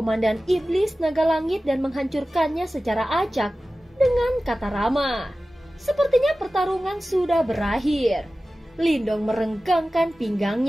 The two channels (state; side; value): normal; both; correlation 0.96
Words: Iblis Naga Langit dan menghancurkannya secara acak dengan kata ramah. Sepertinya pertarungan sudah berakhir. Lindong merenggangkan